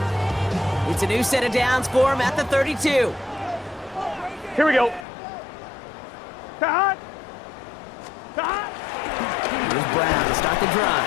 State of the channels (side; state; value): right; drops out; at 5.1 s